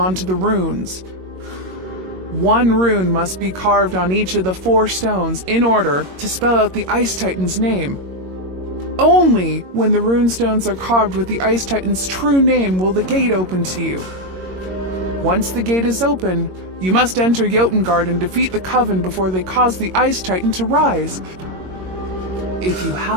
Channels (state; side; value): late; left; 22 ms